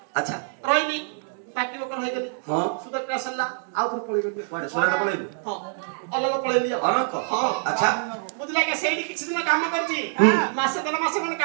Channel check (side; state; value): left; silent; 58 dB below the other